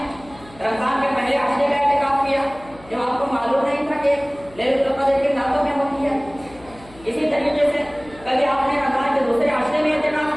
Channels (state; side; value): noise; left; hum, 22 dB below the sound